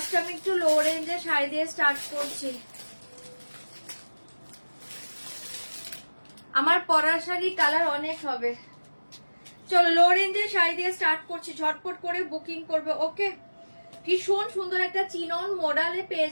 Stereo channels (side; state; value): both; inverted; correlation -1.00